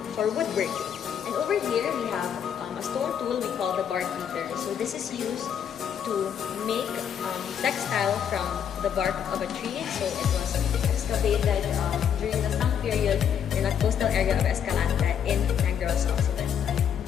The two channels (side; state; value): right; quieter; 8.5 dB